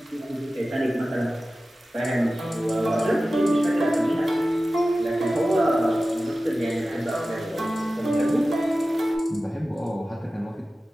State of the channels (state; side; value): normal; both; correlation 0.95